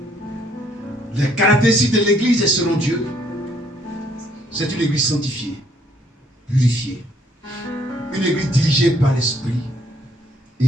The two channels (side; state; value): both; normal; correlation 0.66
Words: Les caractéristiques de l'église selon Dieu, c'est une église sanctifiée, purifiée, une église dirigée par l'Esprit